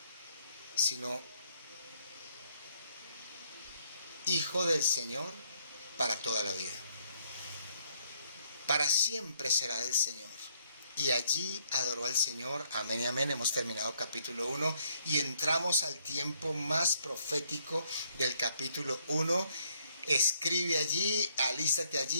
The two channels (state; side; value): inverted; both; correlation -0.69